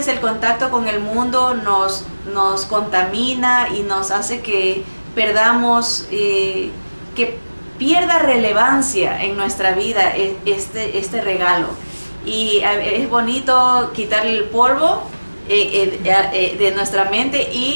el contacto con el mundo nos contamina y nos hace que perdamos, que pierda relevancia en nuestra vida este regalo. Y es bonito quitarle el polvo de nuestra mente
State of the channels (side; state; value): both; inverted; correlation -1.00